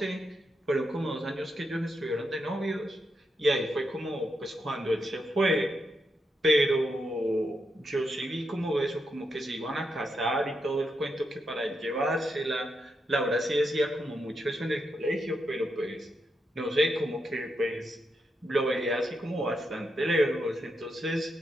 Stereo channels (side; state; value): both; normal; correlation 0.83